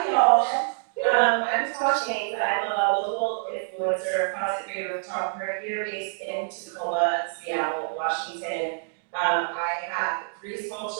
y'all. I'm Tash Haynes. I'm a global influencer, content creator, photographer here based in Tacoma, Seattle, Washington. I have 3 small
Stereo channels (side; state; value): left; silent; digital silence